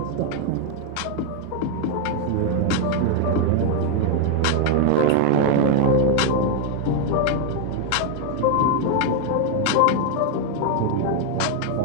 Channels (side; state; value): both; different; correlation 0.01